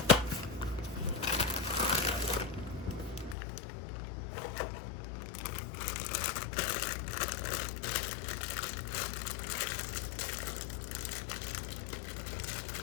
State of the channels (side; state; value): right; drops out; at 3.4 s